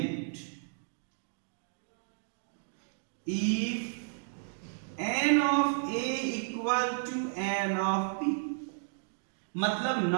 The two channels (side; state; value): left; silent; digital silence